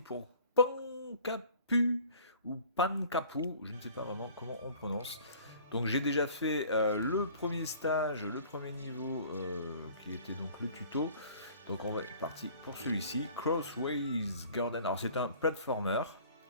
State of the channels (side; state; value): both; inverted; correlation -0.50